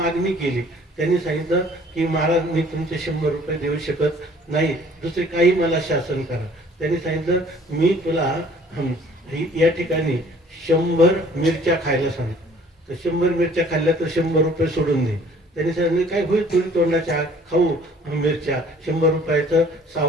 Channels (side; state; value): both; normal; correlation 0.55